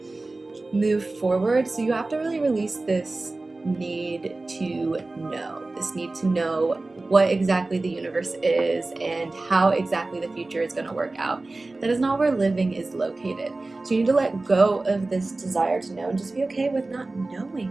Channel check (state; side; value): quieter; left; 3.2 dB